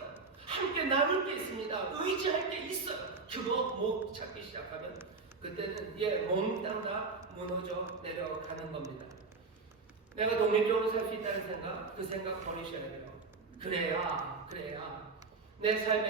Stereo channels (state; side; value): quieter; left; 4.2 dB